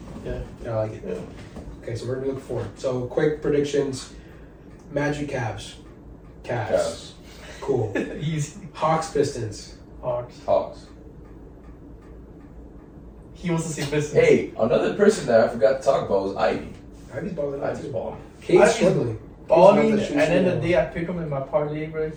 Yeah. I like it. Yeah. Okay, so we're gonna look forward. So quick predictions: Magic, Cavs. Cavs. Cool. Easy. Hawks, Pistons. Hawks. He wants to see Pistons. Hey, another person that I forgot to talk about was Ivy. Ivy's balling out Ivy's too. balling. Cade's Ivy's struggling. Balling, Cade's and not then the shooting day I pick him in my parlay, bro,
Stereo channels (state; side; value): identical; both; correlation 1.00